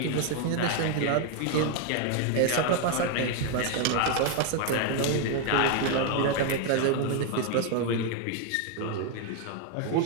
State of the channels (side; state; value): both; different; correlation 0.00